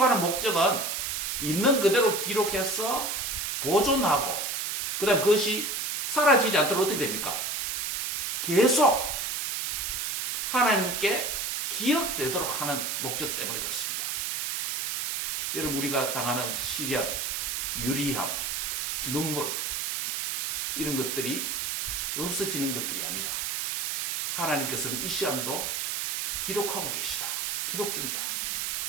목적은 있는 그대로 기록해서 보존하고 그 다음 그것이 사라지지 않도록 어떻게 됩니까? 계속 하나님께 기억되도록 하는 목적 때문에 그렇습니다. 여러분 우리가 당하는 시련, 유리함, 눈물 이런 것들이 없어지는 것들이 아니라 하나님께서는 이 시간도 기록하고 계시다. 기록 중이다.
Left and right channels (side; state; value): right; noise; hiss, 1 dB below the sound